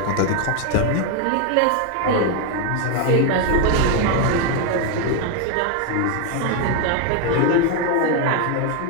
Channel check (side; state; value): both; different; correlation 0.01